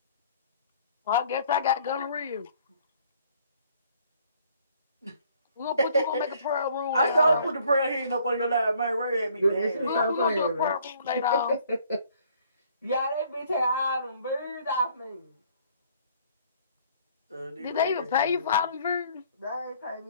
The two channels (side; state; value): both; inverted; correlation -0.60